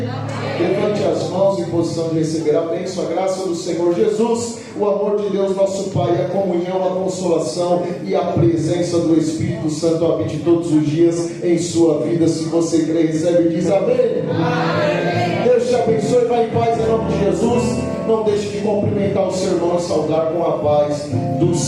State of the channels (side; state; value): both; identical; correlation 1.00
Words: Levante as mãos em posição de receber a bênção, a graça do Senhor Jesus, o amor de Deus nosso Pai, a comunhão, a consolação e a presença do Espírito Santo habite todos os dias em sua vida. Se você crê, recebe e diz amém. Amém. Deus te abençoe, vai em paz em nome de Jesus. não deixe de cumprimentar o seu irmão e saudar com a paz do